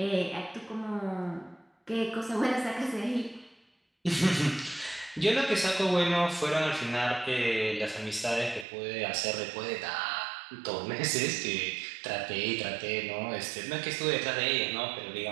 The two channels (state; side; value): drops out; left; at 8.7 s